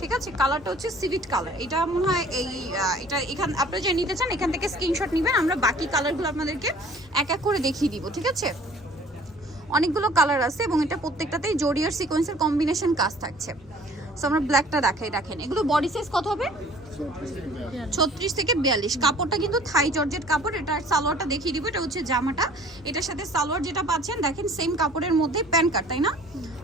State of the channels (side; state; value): both; normal; correlation 0.51